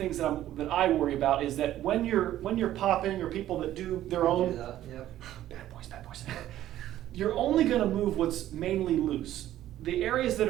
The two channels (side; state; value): left; quieter; 13.1 dB